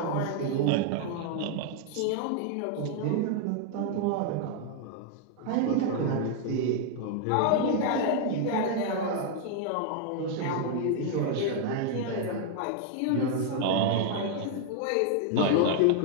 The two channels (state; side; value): different; both; correlation 0.00